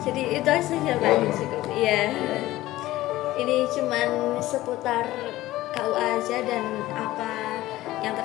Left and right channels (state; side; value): quieter; right; 16.5 dB